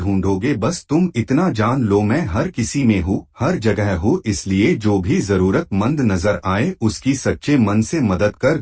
बस तुम इतना जान लो, मैं हर किसी में हूँ, हर जगह हूँ, इसलिए जो भी जरूरतमंद नजर आए उसकी सच्चे मन से मदद कर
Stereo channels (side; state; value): both; identical; correlation 1.00